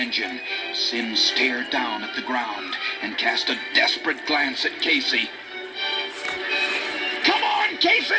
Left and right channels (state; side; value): identical; both; correlation 1.00